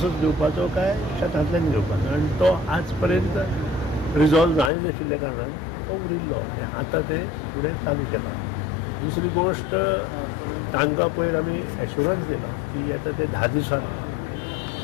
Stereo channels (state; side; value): drops out; right; at 4.7 s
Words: घेवपाचो काय शेतांतल्यान घेवपाचो आनी तो आज पर्यंत रिजॉल्व जायनाशिल्ल्या कारणान तो उरिल्लो आनी आतां ते फुडें चालू केला. दुसरी गोश्ट तांकां पयर आमी एश्युरन्स दिला की येता ते 10 दिसांत